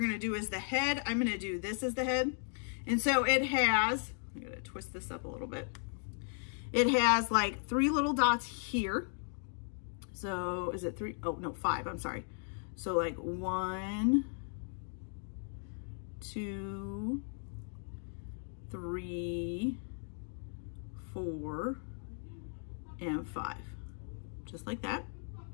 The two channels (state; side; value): silent; right; 53 dB below the other